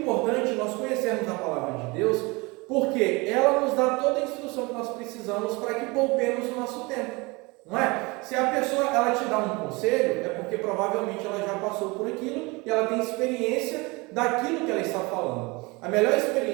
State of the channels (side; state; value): left; quieter; 25.6 dB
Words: nós conhecermos a palavra de Deus, porque ela nos dá toda a instrução que nós precisamos para que poupemos o nosso tempo. Não é? Se a pessoa ela te dá um conselho, é porque provavelmente ela já passou por aquilo e ela tem experiência daquilo que ela está falando. A melhor